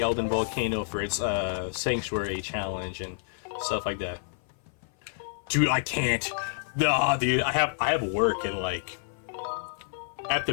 Elden Volcano for its Sanctuary challenge and stuff like that. Dude, I can't. Nah, dude, I have work and like I have to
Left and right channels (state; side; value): silent; right; 56 dB below the other